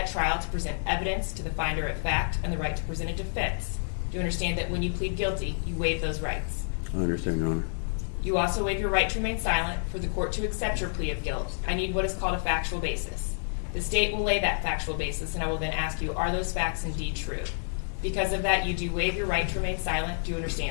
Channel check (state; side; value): silent; right; digital silence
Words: trial to present evidence to the finder of fact and the right to present a defense. Do you understand that when you plead guilty, you waive those rights? I understand, Your Honor. You also waive your right to remain silent for the court to accept your plea of guilt. I need what is called a factual basis. The state will lay that factual basis, and I will then ask you, are those facts indeed true? Because of that, you do waive your right to remain silent. Do you